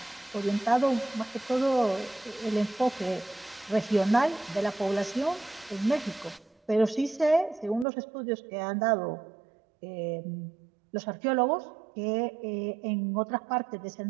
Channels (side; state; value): left; drops out; at 7.9 s